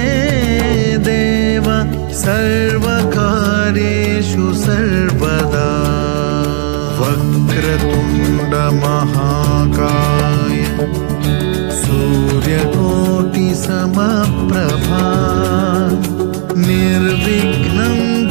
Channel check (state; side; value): silent; left; digital silence